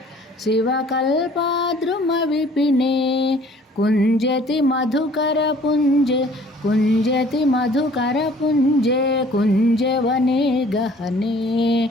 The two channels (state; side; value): normal; both; correlation 0.54